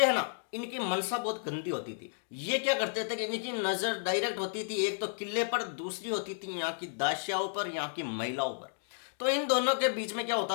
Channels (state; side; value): silent; right; digital silence